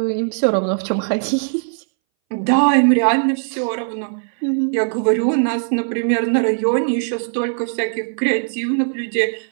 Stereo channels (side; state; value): left; silent; 63 dB below the other